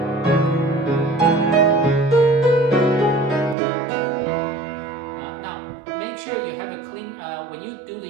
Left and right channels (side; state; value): left; drops out; at 3.6 s